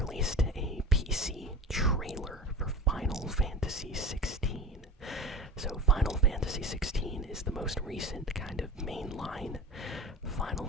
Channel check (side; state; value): both; normal; correlation 0.34